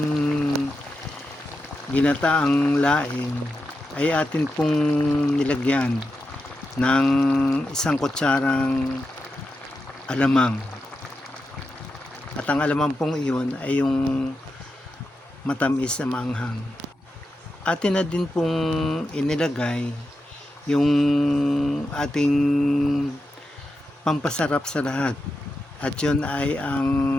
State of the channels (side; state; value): both; normal; correlation 0.88